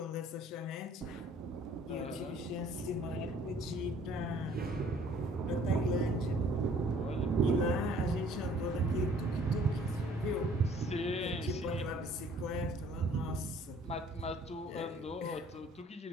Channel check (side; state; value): both; normal; correlation 0.56